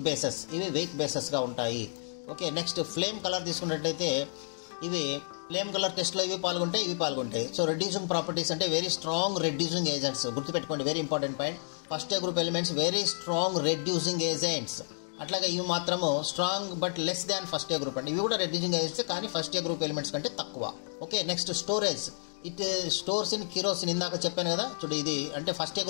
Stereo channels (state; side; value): silent; right; digital silence